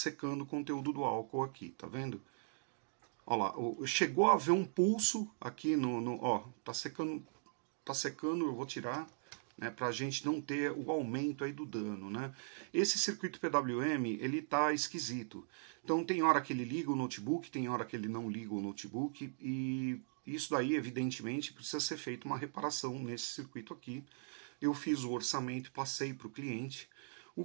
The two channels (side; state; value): left; silent; digital silence